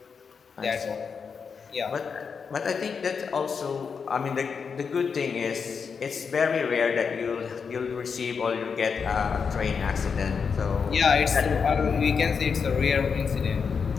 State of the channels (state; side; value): quieter; right; 5.9 dB